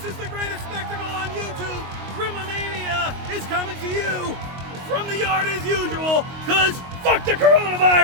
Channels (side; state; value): left; late; 22 ms